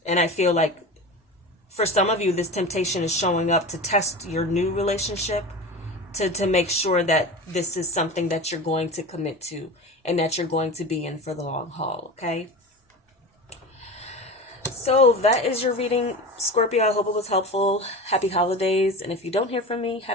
And I feel like for some of you, this temptation is showing up to test your new relationship, to make sure that this is something that you're going to commit to and that you're going to be in for the long haul. Okay. So that is your reading, Scorpio. I hope it was helpful. Happy holidays. And if you don't hear from me,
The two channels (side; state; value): both; normal; correlation 0.30